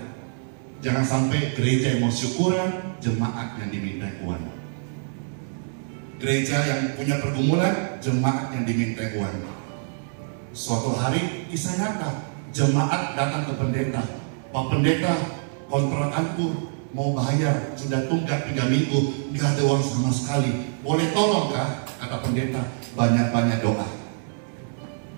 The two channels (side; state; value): left; silent; digital silence